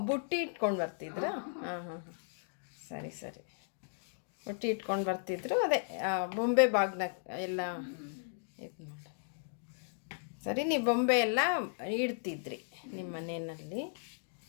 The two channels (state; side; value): silent; right; digital silence